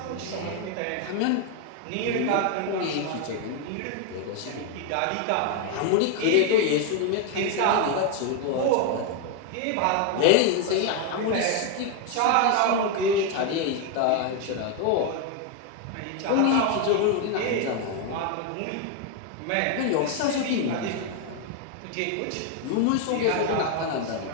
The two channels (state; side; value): different; both; correlation 0.01